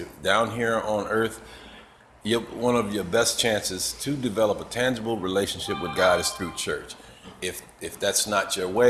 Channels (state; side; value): identical; both; correlation 1.00